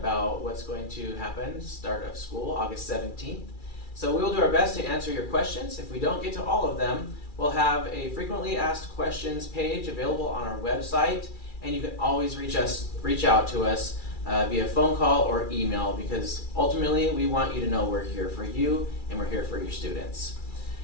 what's going to happen start of school, August 17th. So we will do our best to answer your questions. If we don't get to all of them, we'll have a frequently asked questions page available on our website, and you can always reach out to us via phone call or email, because ultimately we want you to know we're here for you and we're here for your students.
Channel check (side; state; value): right; late; 2.3 ms